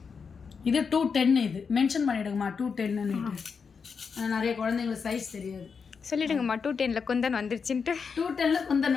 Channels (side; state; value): right; quieter; 5.7 dB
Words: இது 210. இது மென்ஷன் பண்ணிவிடுங்கம்மா 210ன்னு. நிறைய குழந்தைங்களுக்கு சைஸ் தெரியாது. சொல்லிடுங்கம்மா 210 குந்தன் வந்துருச்சுன்ட்டு. 210